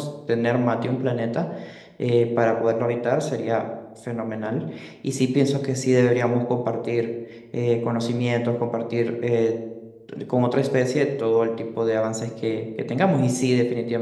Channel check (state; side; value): identical; both; correlation 1.00